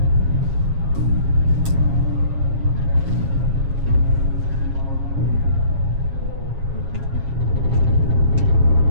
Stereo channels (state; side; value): late; left; 7.3 ms